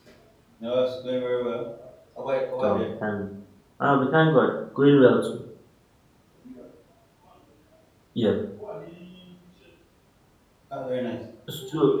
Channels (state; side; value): identical; both; correlation 1.00